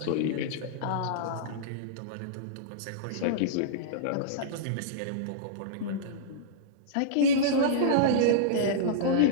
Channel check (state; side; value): different; both; correlation -0.04